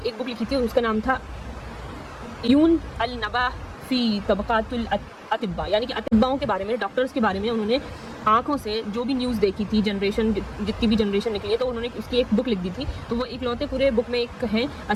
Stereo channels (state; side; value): identical; both; correlation 1.00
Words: बुक लिखी थी, उसका नाम था यून अल नबा फ़ी तबक़ातुल अतिब्बा, यानी कि अतिब्बाओं के बारे में, डॉक्टर्स के बारे में उन्होंने आँखों से जो भी न्यूज़ देखी थी, जितनी भी जनरेशन निकली है, तो उन्होंने उसकी एक बुक लिख दी थी। तो वो एक लौते पूरे बुक में एक हैं